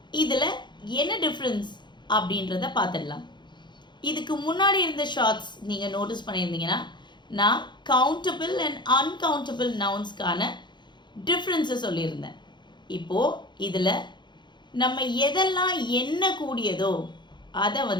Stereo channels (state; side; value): late; right; 0.22 ms